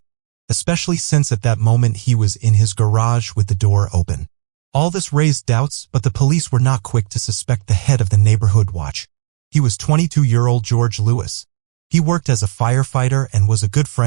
especially since at that moment he was in his garage with the door open. All this raised doubts, but the police were not quick to suspect the head of the neighborhood watch. He was 22-year-old George Lewis. He worked as a firefighter and was a good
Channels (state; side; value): silent; left; 67 dB below the other